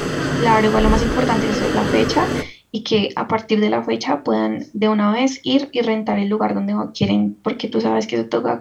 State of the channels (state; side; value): identical; both; correlation 1.00